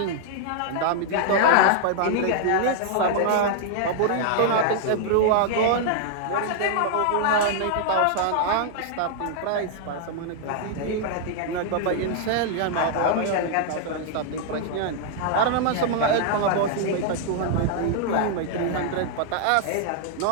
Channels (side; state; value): both; different; correlation -0.01